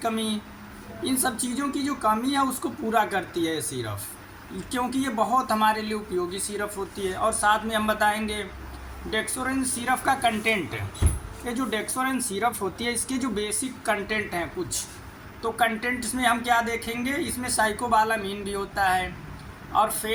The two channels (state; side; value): identical; both; correlation 1.00